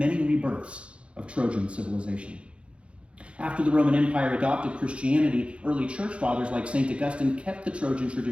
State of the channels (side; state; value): left; late; 0.059 ms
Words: rebirths of Trojan civilization. After the Roman Empire adopted Christianity, early church fathers like St. Augustine kept the Trojan